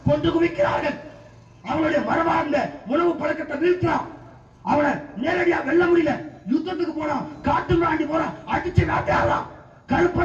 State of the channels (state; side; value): identical; both; correlation 1.00